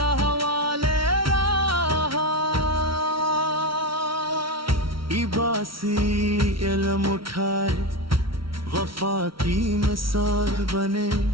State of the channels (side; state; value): left; late; 0.74 ms